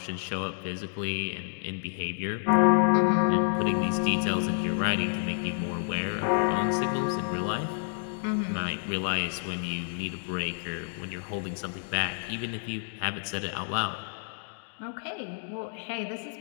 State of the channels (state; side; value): silent; right; 58 dB below the other